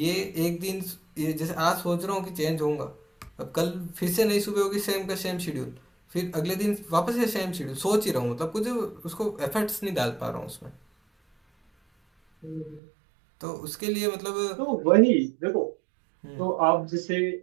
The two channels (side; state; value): left; drops out; at 12.8 s